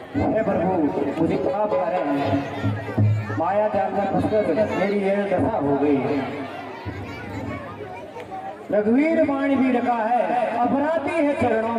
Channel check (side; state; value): both; identical; correlation 1.00